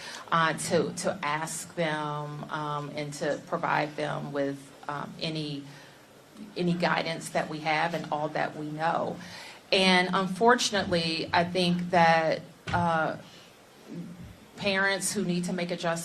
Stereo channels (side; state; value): both; identical; correlation 1.00